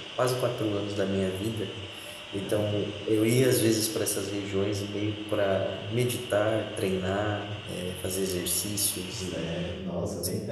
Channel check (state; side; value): identical; both; correlation 1.00